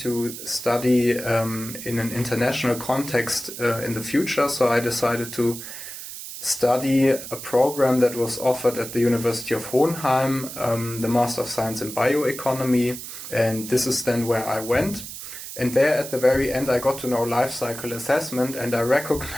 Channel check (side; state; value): right; noise; hiss, 10 dB below the sound